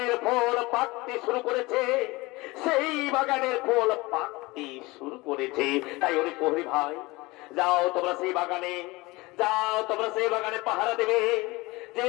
ফল পাকতে শুরু করেছে, সেই বাগানের ফল পাকতে শুরু করেছে। তাই ওরে প্রহরী ভাই, যাও তোমরা সেই বাগানে, যাও তোমরা সেই বাগানে পাহারা দেবে। যে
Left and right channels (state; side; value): quieter; right; 22.5 dB